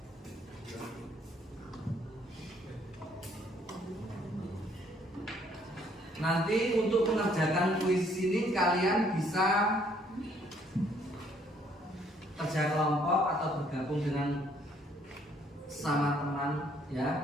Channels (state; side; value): normal; both; correlation 0.65